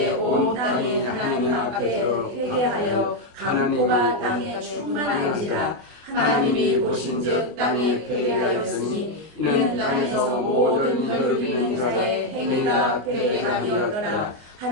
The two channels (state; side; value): late; left; 24 ms